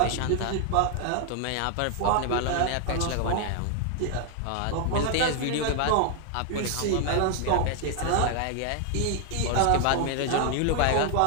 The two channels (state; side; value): different; both; correlation 0.00